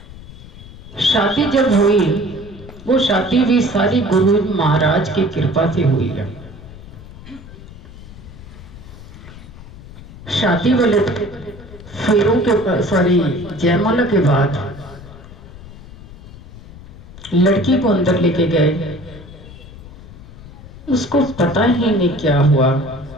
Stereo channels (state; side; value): noise; left; rumble, 17 dB below the sound